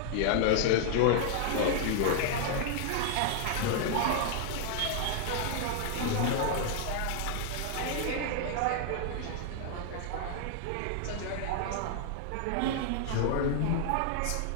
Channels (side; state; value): both; different; correlation 0.00